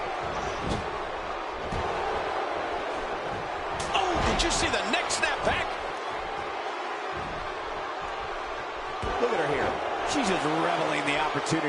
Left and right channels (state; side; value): identical; both; correlation 1.00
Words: Did you see the neck snap back? Look at her here. She's just reveling the